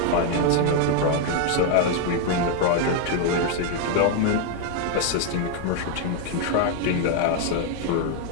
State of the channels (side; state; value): both; different; correlation 0.01